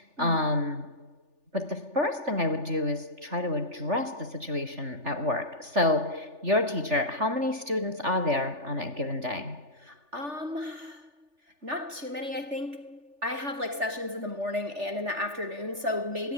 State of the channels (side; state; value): left; late; 3.4 ms